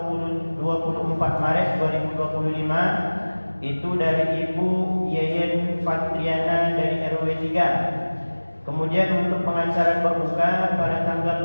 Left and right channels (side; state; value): both; inverted; correlation -1.00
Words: Maret 2025 itu dari Ibu Yeyen Fatriana dari RW 3. Kemudian untuk pengantaran berbuka pada